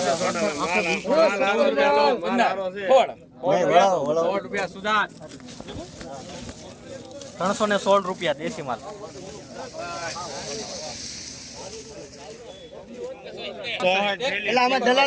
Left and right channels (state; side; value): identical; both; correlation 1.00